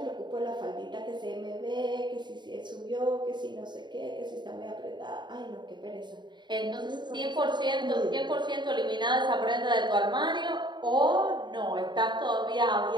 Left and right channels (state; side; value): late; left; 0.22 ms